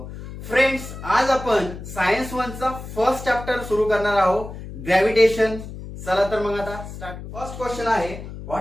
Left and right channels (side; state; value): left; noise; hum, 11 dB below the sound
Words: फ्रेंड्स, आज आपण सायन्स 1 चा फर्स्ट चॅप्टर सुरू करणार आहोत, ग्रॅव्हिटेशन. चला तर मग आता स्टार्ट. फर्स्ट क्वेश्चन आहे,